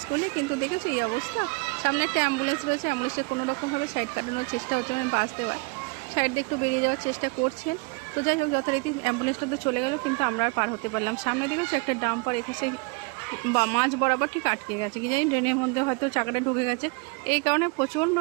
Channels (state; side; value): quieter; left; 30.9 dB